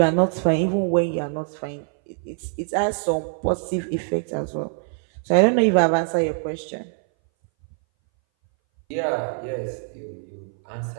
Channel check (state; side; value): silent; left; 60 dB below the other